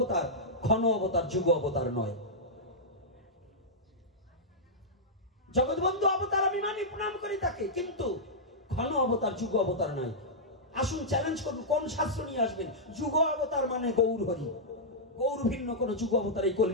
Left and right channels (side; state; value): both; normal; correlation -0.10